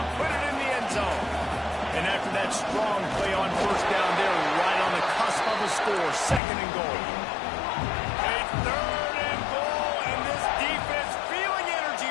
put it in the end zone. And after that strong play on first down, they're right on the cusp of a score. Second and goal. A third and goal, and this defense feeling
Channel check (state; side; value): drops out; right; at 6.4 s